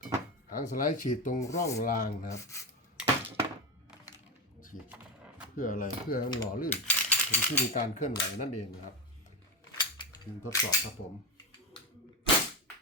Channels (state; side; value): normal; both; correlation 0.14